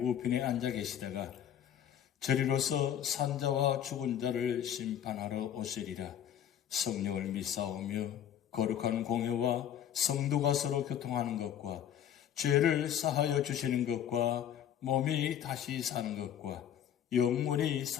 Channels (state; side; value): quieter; right; 10.0 dB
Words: 우편에 앉아 계시다가 저리로서 산자와 죽은 자를 심판하러 오시리라. 성령을 믿사오며 거룩한 공회와 성도가 서로 교통하는 것과 죄를 사하여 주시는 것과 몸이 다시 사는 것과 영원히